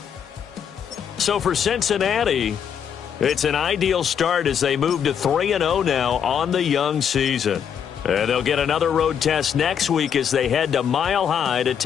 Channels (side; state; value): right; quieter; 8.1 dB